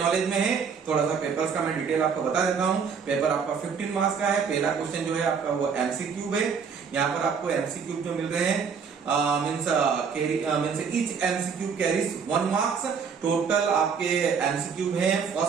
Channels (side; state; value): left; quieter; 6.2 dB